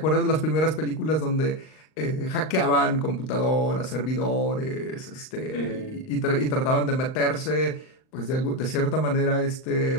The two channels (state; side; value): late; right; 39 ms